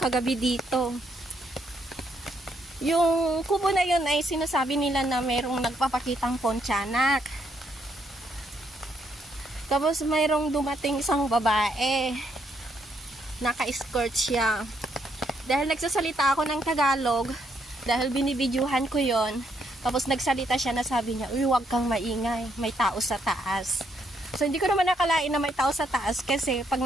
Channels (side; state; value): both; normal; correlation 0.74